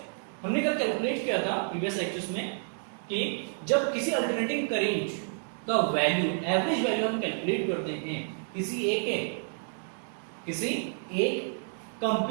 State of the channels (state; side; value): silent; left; 58 dB below the other